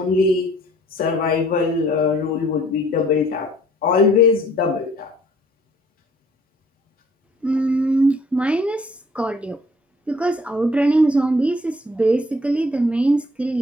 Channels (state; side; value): normal; both; correlation 0.59